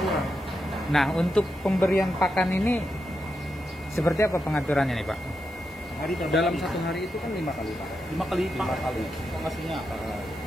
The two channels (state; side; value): normal; both; correlation 0.86